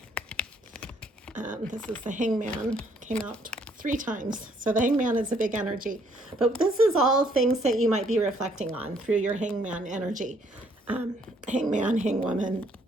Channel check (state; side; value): normal; both; correlation 0.66